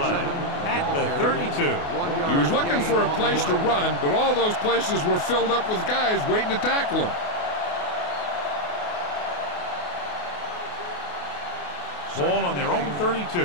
at the 32. He was looking for a place to run, but all those places were filled up with guys waiting to tackle him. Ball on their own 32.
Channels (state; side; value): late; right; 28 ms